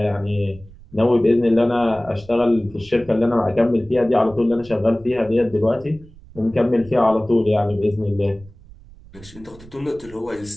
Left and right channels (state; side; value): noise; right; rumble, 22 dB below the sound